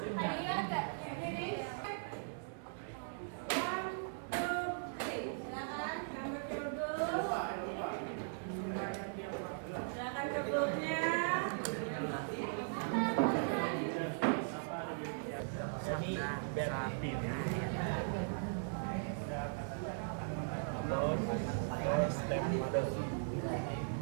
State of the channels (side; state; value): left; silent; digital silence